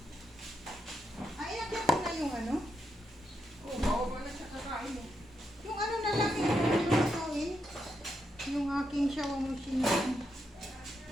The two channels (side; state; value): both; normal; correlation 0.82